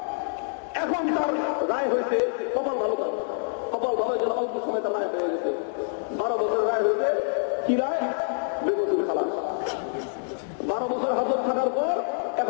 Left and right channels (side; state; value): right; silent; digital silence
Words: এখন তার রায় হয়েছে, কপাল ভালো কথা, কপাল ভালোর জন্য অল্প সময় তার রায় হয়ে গেছে। 12 বছর রায় হয়েছে, কি রায়? বেকুতুব খালাস। 12 বছর হাজত থাকার পর